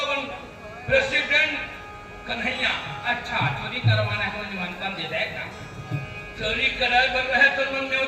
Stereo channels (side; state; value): both; identical; correlation 1.00